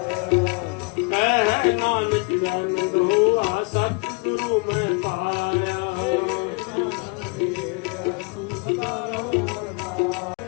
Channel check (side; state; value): right; quieter; 30.5 dB